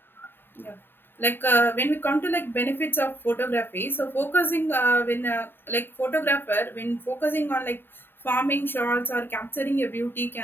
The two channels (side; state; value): right; late; 0.10 ms